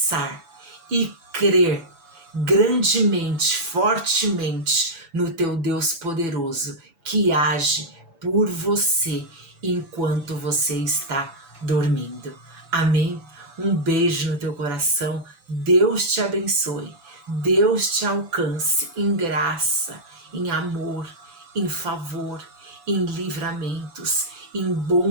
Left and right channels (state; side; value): late; left; 7.0 ms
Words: e crer grandemente, fortemente no teu Deus poderoso que age por você enquanto você está dormindo. Amém? Um beijo no teu coração. Deus te abençoe. Deus te alcance em graça, em amor, em favor, em livramentos, em